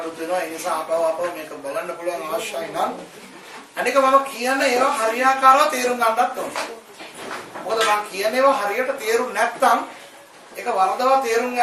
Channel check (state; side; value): identical; both; correlation 1.00